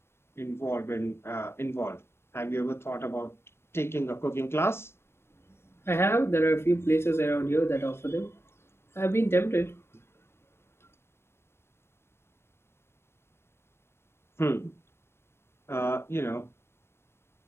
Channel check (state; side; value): late; right; 0.12 ms